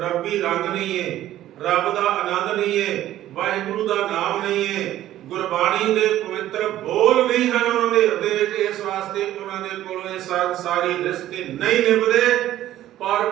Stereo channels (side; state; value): left; quieter; 13.4 dB